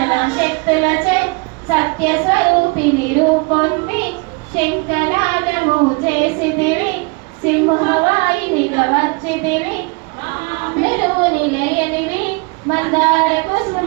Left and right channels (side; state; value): left; quieter; 30.5 dB